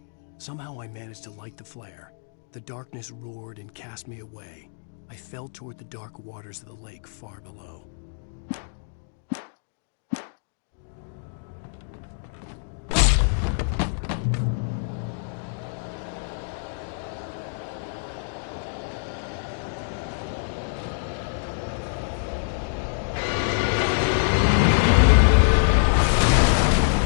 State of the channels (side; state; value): right; silent; digital silence